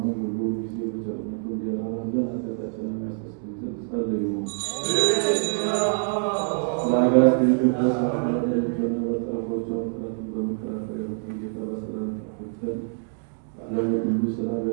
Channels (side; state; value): left; silent; 61 dB below the other